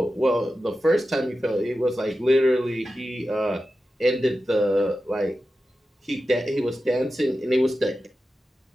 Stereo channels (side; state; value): both; normal; correlation 0.92